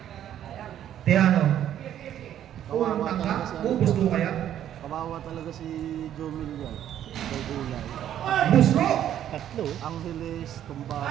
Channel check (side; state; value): left; quieter; 10.9 dB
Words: Tejano. Unang tangka. Gusto kaya? Kawawa talaga si Jomil yan. Kay Gulay. Busro! tatlo. Angeles,